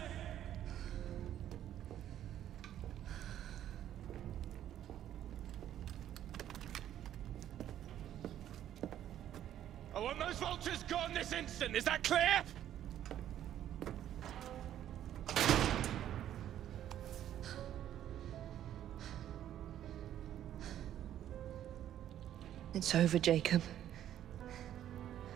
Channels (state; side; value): quieter; left; 11.3 dB